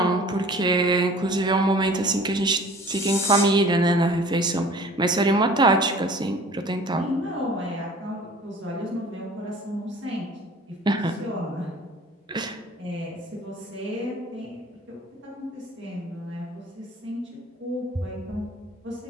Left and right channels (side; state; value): both; normal; correlation 0.47